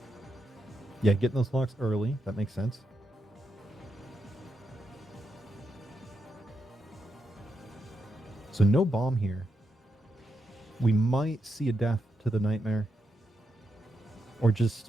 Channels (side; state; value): both; normal; correlation 0.84